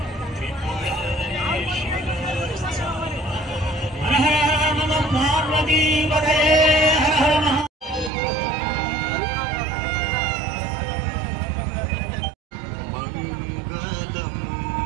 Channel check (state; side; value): drops out; left; at 8.1 s